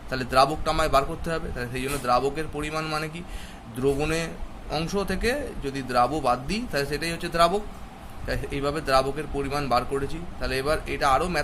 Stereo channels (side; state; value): both; identical; correlation 1.00